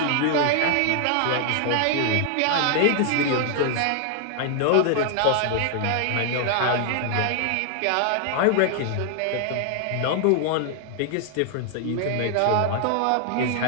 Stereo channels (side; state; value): both; different; correlation 0.00